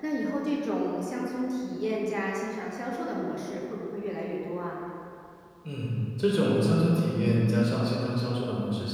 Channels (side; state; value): both; identical; correlation 1.00